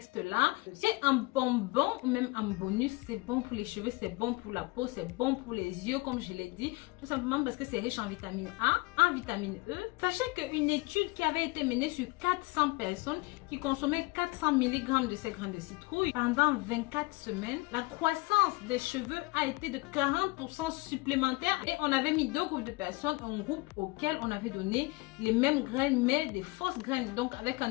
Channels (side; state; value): right; quieter; 23.9 dB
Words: C'est un bonbon ou même un bonus. C'est bon pour les cheveux, c'est bon pour la peau, c'est bon pour les yeux, comme je l'ai dit. Tout simplement parce que c'est riche en vitamine A, en vitamine E. Sachez qu'une étude qui avait été menée sur 400 personnes qui consommaient 400 mg de ces graines de citrouille pendant 24 semaines, la croissance des cheveux a été de 40% supplémentaire. Et on avait mis deux groupes de personnes, un groupe auquel on avait donné les mêmes graines mais des fausses graines, donc avec un